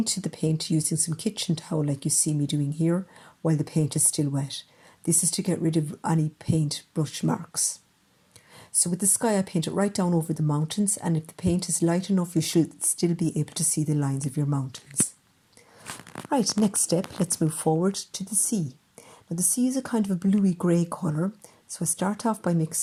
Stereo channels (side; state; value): both; identical; correlation 1.00